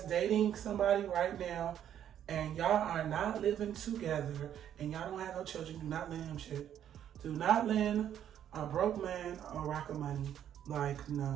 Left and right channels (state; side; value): quieter; left; 10.1 dB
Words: dating somebody right now and y'all are not living together and y'all don't have no children, do not lend him shit. Do not lend a broke man a rock of money. Like,